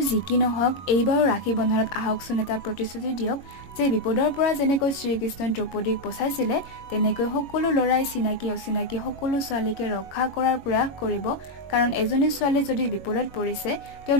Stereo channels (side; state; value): right; late; 21 ms